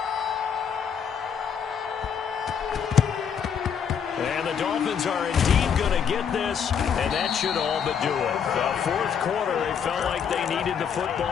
Dolphins are indeed going to get this, and that should all but do it. The fourth quarter, they felt like they needed the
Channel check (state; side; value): quieter; right; 7.4 dB